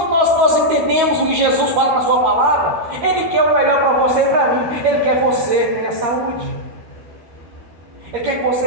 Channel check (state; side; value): late; left; 13 ms